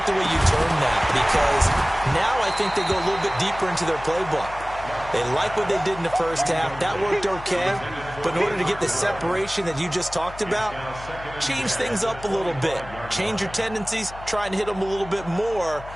the way you term that because now I think they go a little bit deeper into their playbook. They like what they did in the first half. That worked okay. But in order to get the separation that you just talked about, change things up a little bit. Change your tendencies. Try and hit them a little bit more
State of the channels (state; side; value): noise; left; hum, 15 dB below the sound